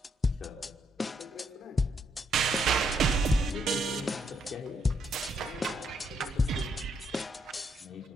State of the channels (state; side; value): normal; both; correlation 0.75